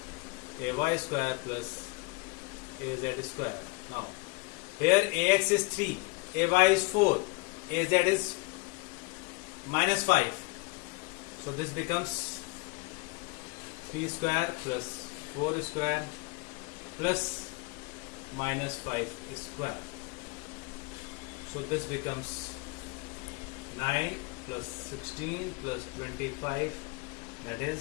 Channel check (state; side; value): quieter; right; 27.9 dB